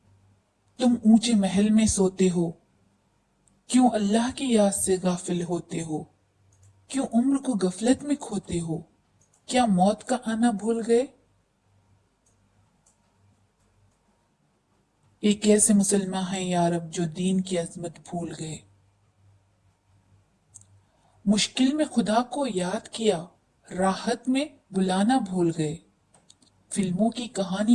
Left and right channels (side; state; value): both; identical; correlation 1.00